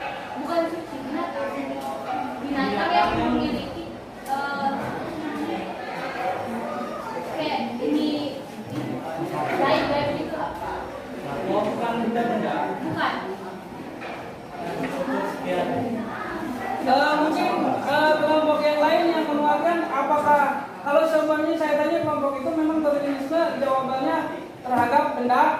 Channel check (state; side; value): identical; both; correlation 1.00